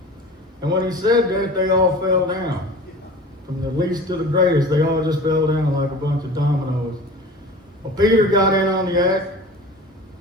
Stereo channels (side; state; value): both; normal; correlation 0.39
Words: And when he said that, they all fell down. From the least to the greatest, they all just fell down like a bunch of dominoes. Well, Peter got in on the act,